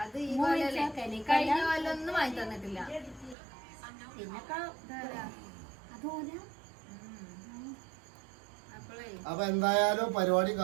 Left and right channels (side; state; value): left; drops out; at 3.4 s